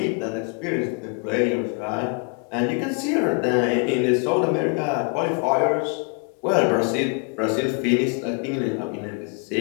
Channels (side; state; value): right; quieter; 37.7 dB